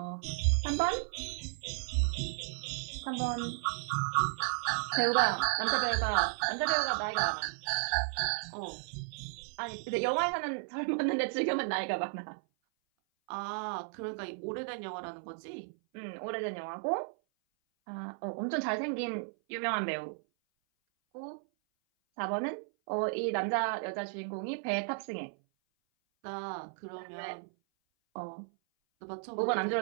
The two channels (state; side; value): silent; left; 55 dB below the other